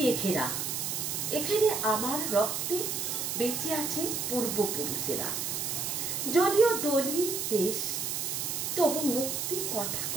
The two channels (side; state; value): right; noise; hiss, 2 dB below the sound